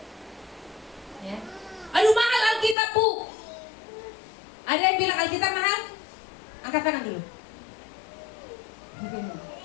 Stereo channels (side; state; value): right; drops out; at 2.8 s